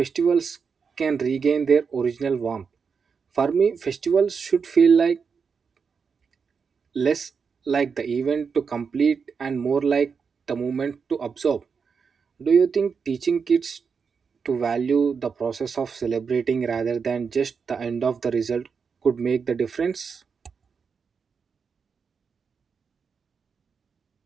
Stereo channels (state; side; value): quieter; left; 5.8 dB